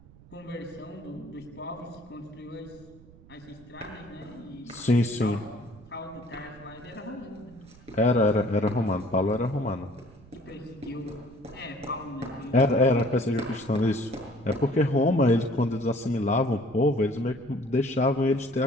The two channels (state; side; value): noise; right; rumble, 23 dB below the sound